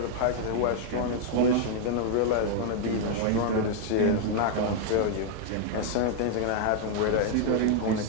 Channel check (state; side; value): different; both; correlation 0.00